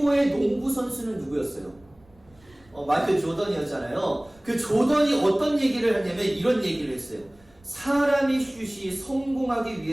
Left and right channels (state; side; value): noise; right; rumble, 29 dB below the sound